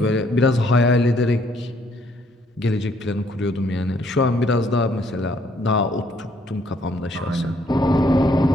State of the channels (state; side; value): normal; both; correlation 0.67